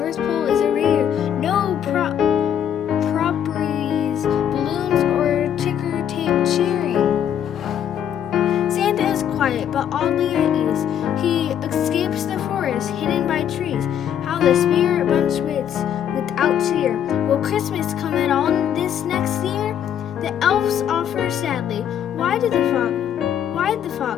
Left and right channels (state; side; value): quieter; right; 9.5 dB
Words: Pole is a rear. No properties, balloons, or ticker tape cheering. Santa is quiet, but oddly at ease. He escapes the forest, hidden by trees. How the spirit bunch waits without cheer. Will Christmas come at all this next year? The elves offer sadly, why did the